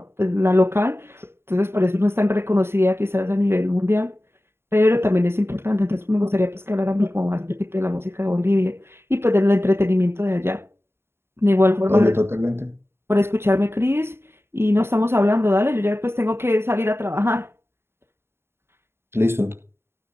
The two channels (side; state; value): left; late; 0.12 ms